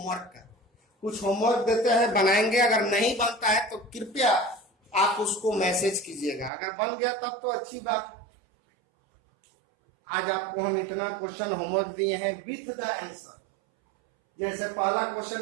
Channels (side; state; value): left; drops out; at 6.5 s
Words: का, कुछ होमवर्क देते हैं बनाएंगे, अगर नहीं बनता है तो कृपया आप उसको मैसेज कीजिएगा, अगर बन गया तब तो अच्छी बात। आज आपको हम इतना क्वेश्चन होमवर्क दिए हैं विथ द आंसर। जैसे पहला